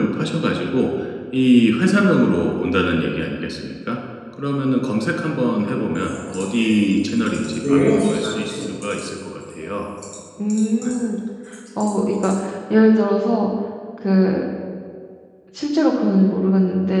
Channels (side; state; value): both; identical; correlation 1.00